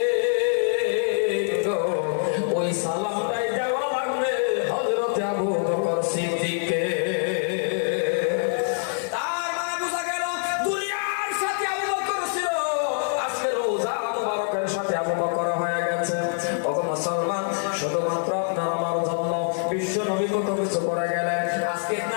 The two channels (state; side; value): silent; right; digital silence